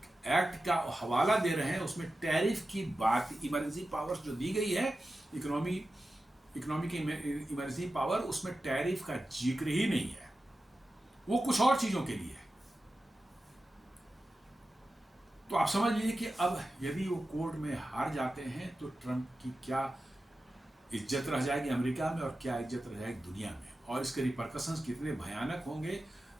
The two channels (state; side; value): normal; both; correlation 0.93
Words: एक्ट का हवाला दे रहे हैं उसमें टैरिफ की बात, इमरजेंसी पावर्स जो दी गई है, इकोनॉमी की इमरजेंसी पावर, उसमें टैरिफ का जिक्र ही नहीं है, वो कुछ और चीजों के लिए है। तो आप समझ लीजिए कि अब यदि वो कोर्ट में हार जाते हैं तो ट्रंप की क्या इज्जत रह जाएगी अमेरिका में और क्या इज्जत रह जाएगी दुनिया में, और इसके रिपरकशंस कितने भयानक होंगे।